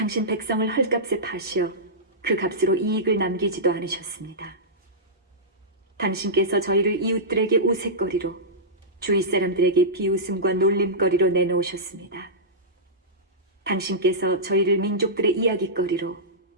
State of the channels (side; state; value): both; normal; correlation -0.15